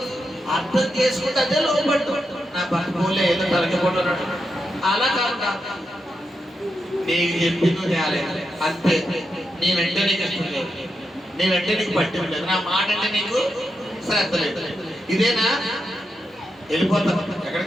అర్థం చేసుకుంటే అదే లోబడటం. నా భర్త పోలే ఏదో తలకే పోట్లు అలా కాకుండా నీకు చెప్పింది చేయాలి అంతే. నేనంటే నీకు ఇష్టం లేదు, నేనంటే నీకు పట్టింపు లేదు, నా మాట అంటే నీకు శ్రద్ధ లేదు. ఇదేనా? వెళ్ళిపోతాం.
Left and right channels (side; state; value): both; normal; correlation 0.86